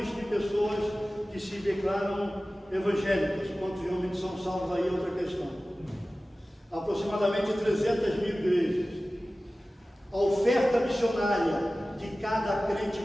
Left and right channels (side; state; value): both; normal; correlation 0.96